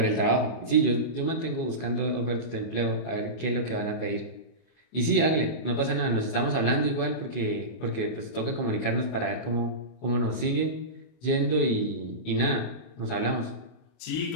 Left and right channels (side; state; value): right; late; 24 ms